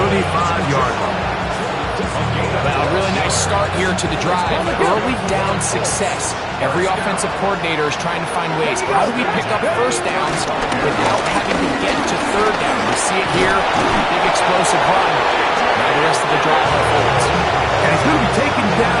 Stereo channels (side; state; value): both; identical; correlation 1.00